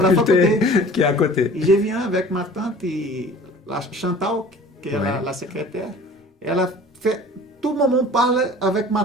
qui est à côté. Et je viens avec ma tante et la Chantal, qui est la secrétaire. Elle a fait, tout le monde parle avec ma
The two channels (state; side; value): normal; both; correlation 0.45